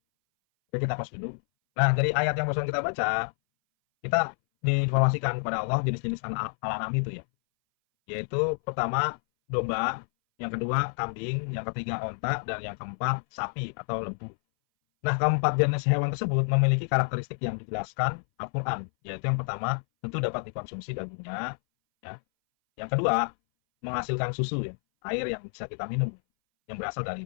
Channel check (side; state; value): right; silent; 58 dB below the other